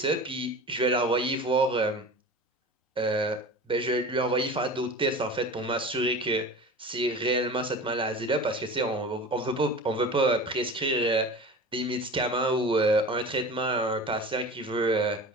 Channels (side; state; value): both; normal; correlation 0.35